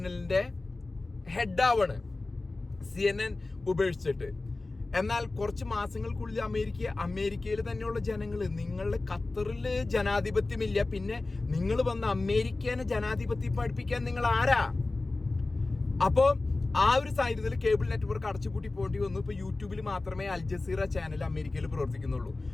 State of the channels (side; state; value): right; quieter; 3.3 dB